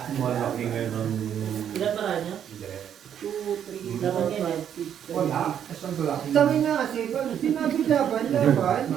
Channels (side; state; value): left; quieter; 9.2 dB